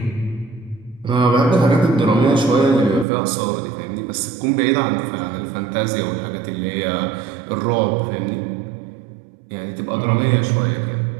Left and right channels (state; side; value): drops out; left; at 3.1 s